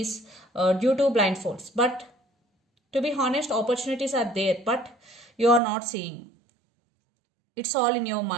due to blindfolds. But to be honest, opportunities are there, but you are not seeing. It's all in your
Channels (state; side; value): drops out; left; at 5.6 s